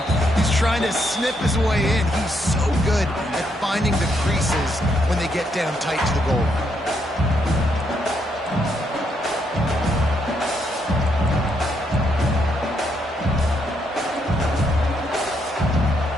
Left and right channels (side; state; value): both; normal; correlation 0.76